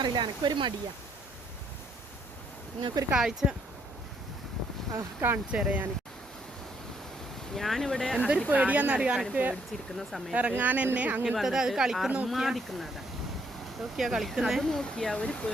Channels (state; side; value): normal; both; correlation 0.70